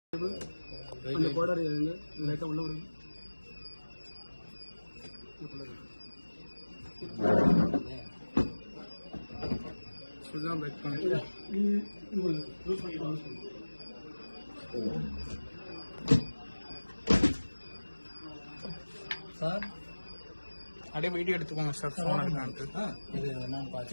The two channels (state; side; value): inverted; both; correlation -1.00